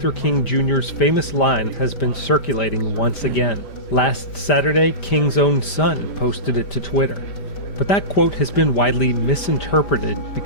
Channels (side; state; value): right; late; 5.1 ms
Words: King Jr.'s famous line has been circulating once again. Last Saturday, King's own son posted it to Twitter. But that quote has been widely misinterpreted